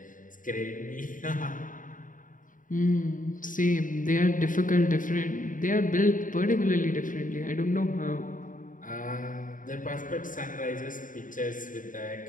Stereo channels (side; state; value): right; late; 0.38 ms